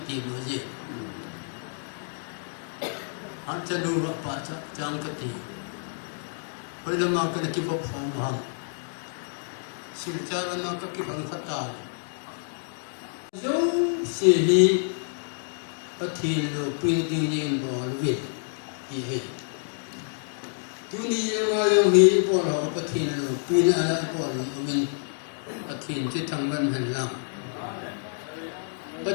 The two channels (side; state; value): right; silent; digital silence